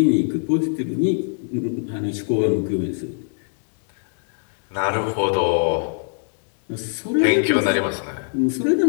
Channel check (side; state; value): right; silent; digital silence